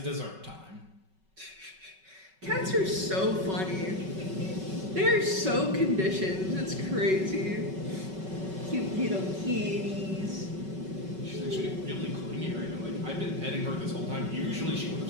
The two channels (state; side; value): late; left; 5.3 ms